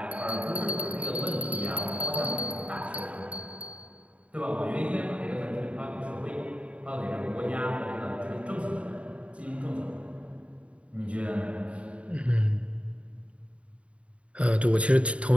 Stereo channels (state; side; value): late; left; 0.062 ms